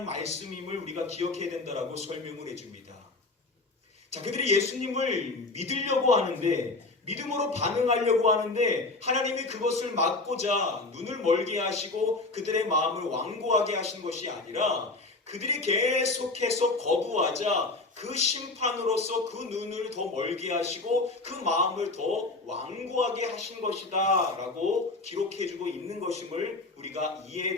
말씀임을 우리가 기억해야 된다라고 설명을 해줍니다. 자, 그들이 예수님을 믿으려고 하는데, 믿음으로 반응하려고 하는데 하나님이 그것을 막고자 눈을 멀게 하시고 그들의 마음을 완고하게 하신 것이 아니라 그들이 계속해서 거부하자 그 심판으로서 그 눈을 더 멀게 하시고 그 마음을 더 완고하게 하신 것이다 라고 기록해주고 있는 것임을 우리가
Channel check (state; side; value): quieter; right; 3.3 dB